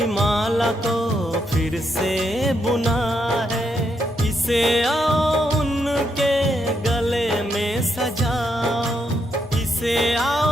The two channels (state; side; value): normal; both; correlation 0.79